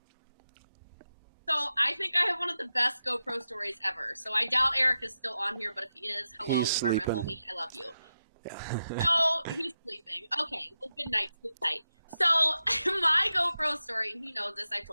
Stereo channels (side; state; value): both; inverted; correlation -0.90